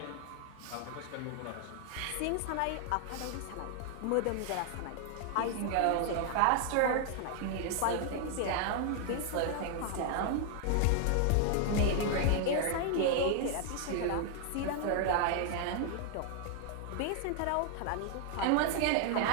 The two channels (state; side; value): different; both; correlation 0.00